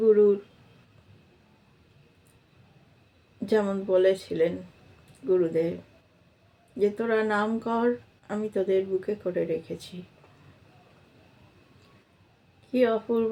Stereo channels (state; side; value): identical; both; correlation 1.00